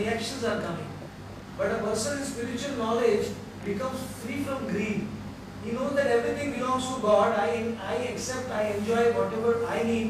are coming. But a person in spiritual knowledge becomes free from greed. He knows that everything belongs to God. I accept, I enjoy whatever I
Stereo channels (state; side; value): identical; both; correlation 1.00